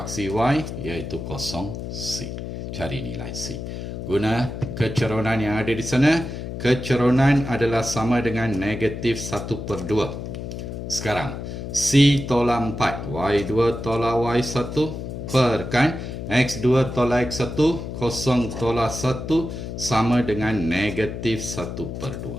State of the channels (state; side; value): noise; left; hum, 7 dB below the sound